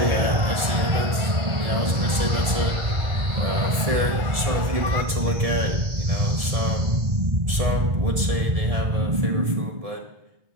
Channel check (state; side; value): late; left; 1.7 ms